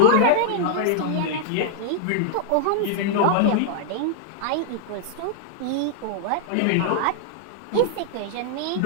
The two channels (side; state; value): both; different; correlation -0.01